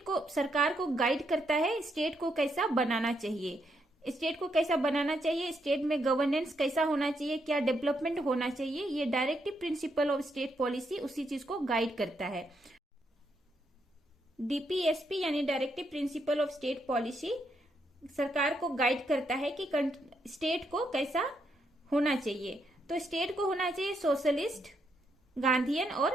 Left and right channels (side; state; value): both; normal; correlation 0.78